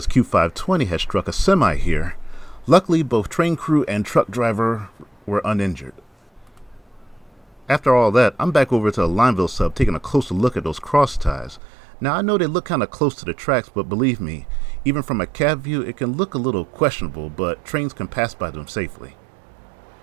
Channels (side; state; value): left; drops out; at 11.6 s